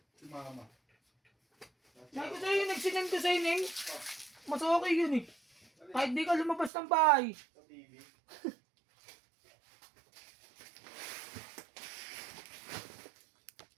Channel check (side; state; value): left; drops out; at 6.7 s